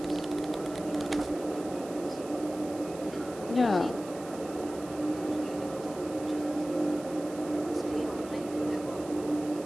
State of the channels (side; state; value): right; noise; hiss, 18 dB below the sound